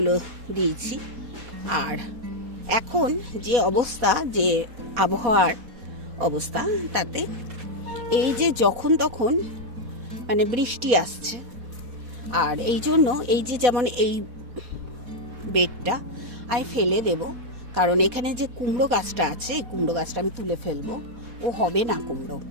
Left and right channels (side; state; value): left; late; 4.2 ms